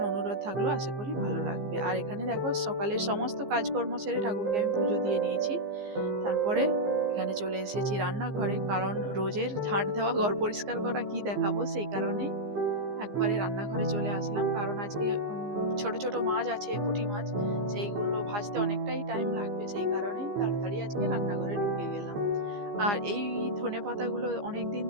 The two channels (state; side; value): late; left; 15 ms